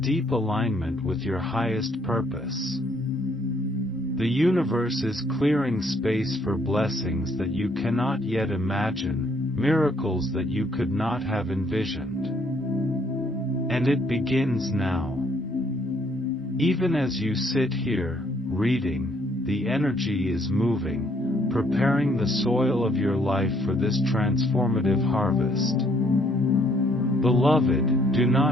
alignment with your highest purpose. The universe is clearing space for blessings that you cannot yet imagine, miracles that you could not have envisioned. And it begins now. Even as you sit here, reading, the energy is moving, preparing the soil of your life for this transformative harvest. Beloved, do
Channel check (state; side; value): normal; both; correlation 0.66